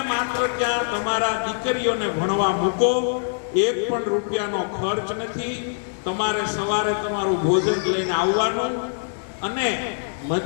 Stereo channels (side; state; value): right; silent; digital silence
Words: માત્ર ત્યાં તમારા દીકરીઓને ભણવા મૂકો, એક પણ રૂપિયાનો ખર્ચ નથી. તમારે સવારે તમારું ભોજન લઈને આવવાનું અને